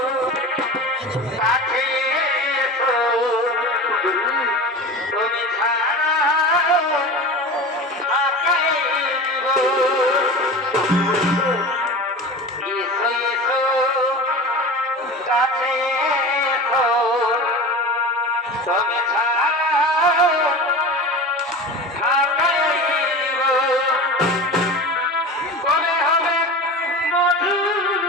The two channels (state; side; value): normal; both; correlation 0.31